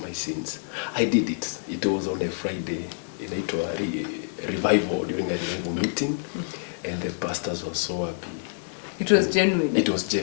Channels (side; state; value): right; silent; 60 dB below the other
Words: my sins. I did it. It was on a Friday in a revival, during a revival meeting, and the pastors were so happy. It was genuine. It was